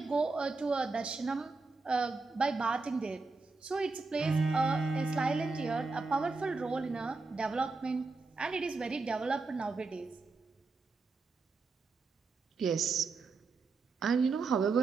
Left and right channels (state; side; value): quieter; left; 4.0 dB